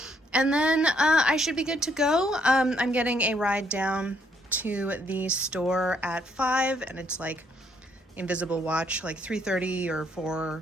And then I should be good to go. I'm getting a ride down to the store at 5, and it's like invisible watch, like 3:30 or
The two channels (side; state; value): both; normal; correlation 0.70